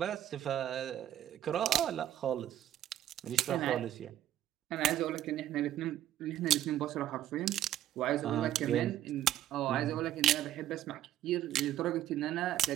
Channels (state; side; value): quieter; left; 12.3 dB